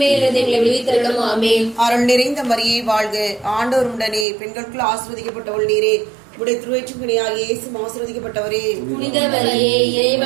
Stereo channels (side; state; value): left; drops out; at 4.2 s